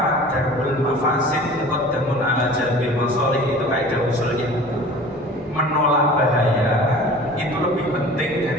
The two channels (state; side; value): normal; both; correlation 0.42